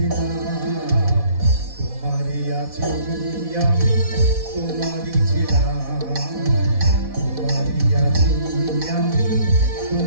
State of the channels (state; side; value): late; left; 4.1 ms